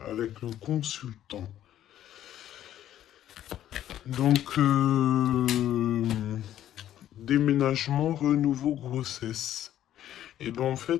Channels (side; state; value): right; quieter; 11.8 dB